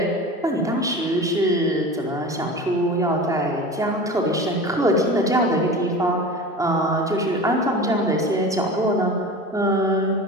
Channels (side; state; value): both; normal; correlation 0.34